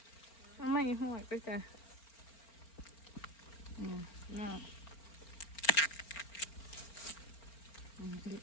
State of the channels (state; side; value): late; right; 4.4 ms